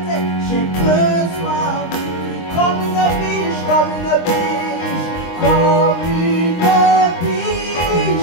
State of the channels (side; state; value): right; late; 23 ms